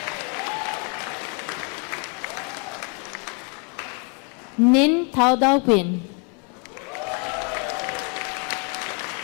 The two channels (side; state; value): right; quieter; 35.5 dB